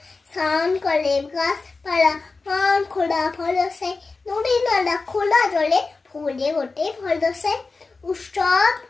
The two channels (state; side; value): quieter; right; 4.0 dB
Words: স্নান করে গাছপালা মান খোলা ভরসে, নদী নালা খোলা জলে ফুলে ওঠে ভরসে। উৎসব